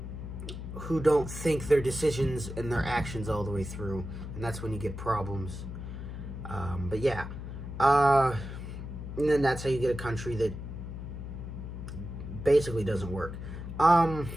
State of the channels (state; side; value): noise; left; hum, 8 dB below the sound